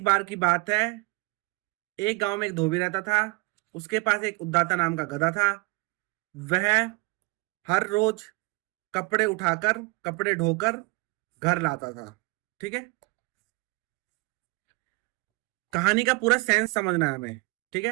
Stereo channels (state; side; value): quieter; left; 25.8 dB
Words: बार की बात है, एक गांव में एक धोबी रहता था। उसके पास एक उद्दाता नाम का गधा था। वह हर रोज कपड़े उठाकर, कपड़े ढोकर घर लाता था। ठीक है, कहानी का पूरा सेंस समझना है हमें। ठीक